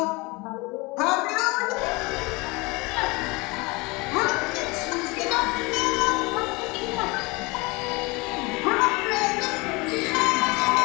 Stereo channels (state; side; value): quieter; right; 25.3 dB